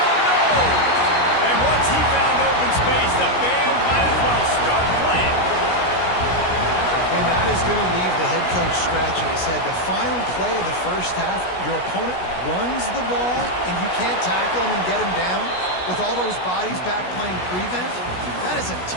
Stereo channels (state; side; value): late; right; 16 ms